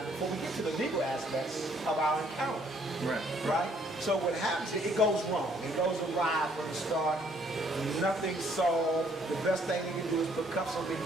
before we get to the legal aspects of our encounter. Right? So what happens is it goes wrong. It goes awry from the start. Nothing's solved. The best thing you can do is put cuffs on me,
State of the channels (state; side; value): normal; both; correlation 0.65